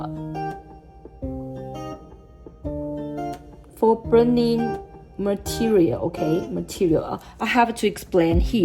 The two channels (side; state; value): both; identical; correlation 1.00